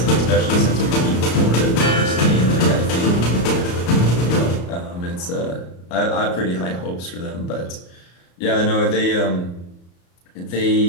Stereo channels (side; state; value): right; late; 34 ms